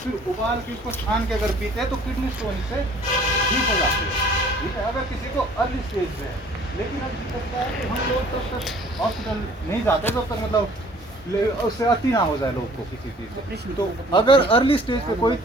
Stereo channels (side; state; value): both; normal; correlation 0.54